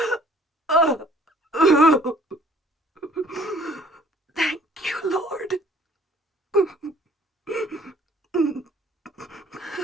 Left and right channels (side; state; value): both; normal; correlation 0.57